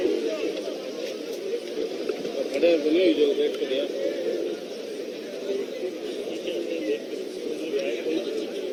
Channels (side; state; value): both; identical; correlation 1.00